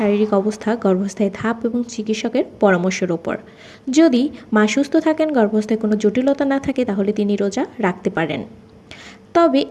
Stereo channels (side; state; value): both; identical; correlation 1.00